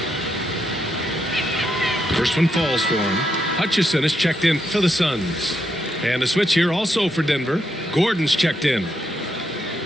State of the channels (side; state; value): both; normal; correlation 0.80